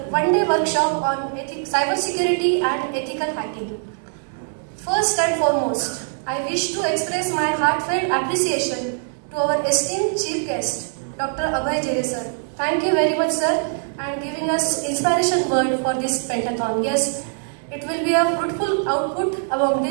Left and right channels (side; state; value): left; silent; digital silence